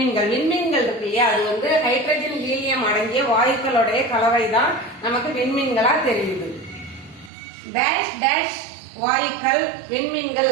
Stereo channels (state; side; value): drops out; left; at 7.3 s